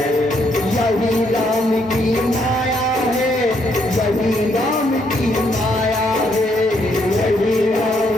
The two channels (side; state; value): both; normal; correlation 0.73